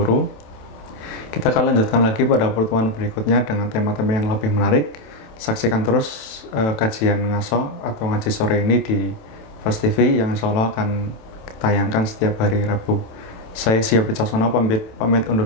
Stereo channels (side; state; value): right; late; 27 ms